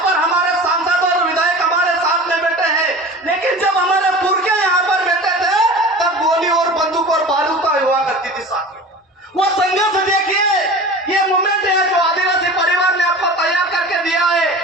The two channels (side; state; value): both; normal; correlation 0.37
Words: पर हमारे सांसद और विधायक हमारे साथ में बैठे हैं, लेकिन जब हमारे पुरखे यहाँ पर बैठे थे तब गोली और बंदूक और बारूद का हुआ करती थी साथियों। वो संघर्ष देखिए, ये मूवमेंट है जो आदिवासी परिवार ने आपको तैयार करके दिया है।